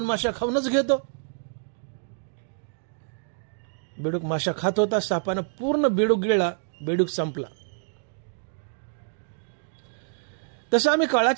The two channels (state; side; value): silent; left; digital silence